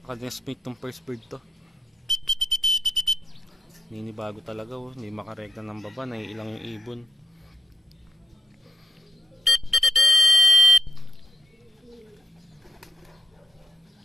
tong first bird to. Ninibago talaga, hindi makarekta ng baba, naiilang yung ibon.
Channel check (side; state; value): both; normal; correlation 0.87